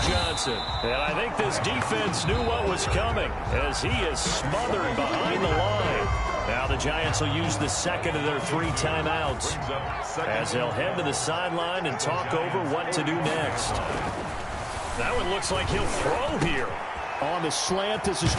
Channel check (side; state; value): both; identical; correlation 1.00